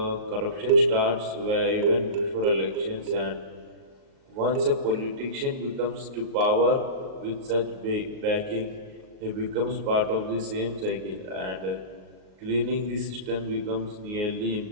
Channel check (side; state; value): left; late; 38 ms